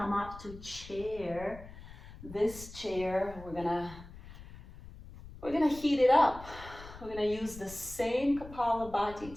up to chair. This chair, we're gonna heat it up. We're gonna use the same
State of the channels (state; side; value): noise; left; rumble, 16 dB below the sound